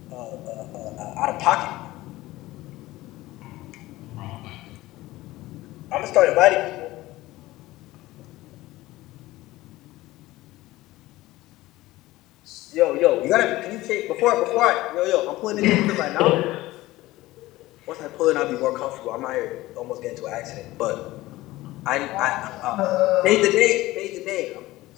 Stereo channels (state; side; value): quieter; right; 17.9 dB